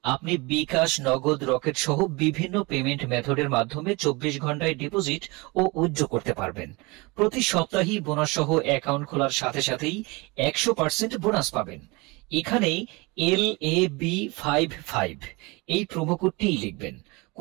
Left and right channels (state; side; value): quieter; left; 25.7 dB